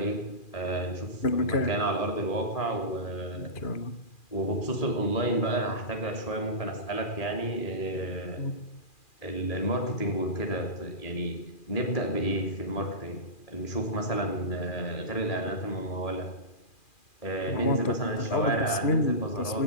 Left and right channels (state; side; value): late; right; 2.4 ms